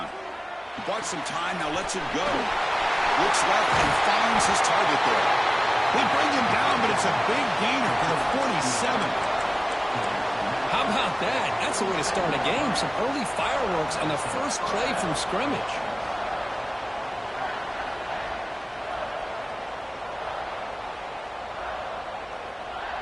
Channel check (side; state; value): both; identical; correlation 1.00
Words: He bought some time, now lets it go. Looks left and finds his target there. They bring him down, but it's a big gainer for the 47. How about that? That's the way to start a game. Some early fireworks on the first play from scrimmage.